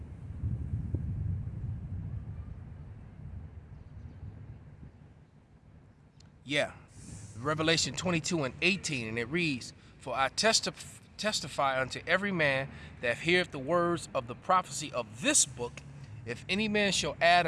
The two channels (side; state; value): both; identical; correlation 1.00